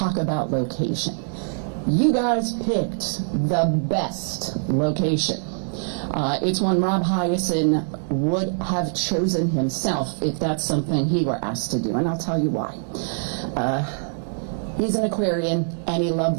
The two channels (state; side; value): silent; left; digital silence